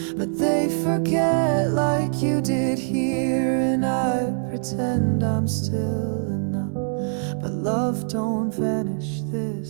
but they forget like you did here. And I pretend I'm still enough, but love, don't vanish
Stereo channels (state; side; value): silent; left; digital silence